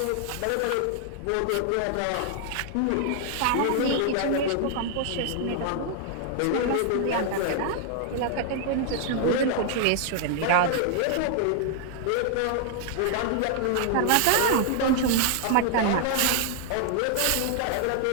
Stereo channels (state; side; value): different; both; correlation 0.00